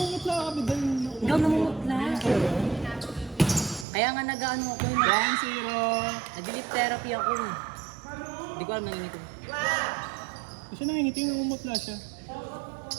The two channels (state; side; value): drops out; left; at 3.9 s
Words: ka, bidal. Ikaw namumutla. Kaya nga nag-ano ako, Ground zero. nag-delete therapy ako. Hindi ko alam nangingitim. Kasi nangingiting, namumutla siya.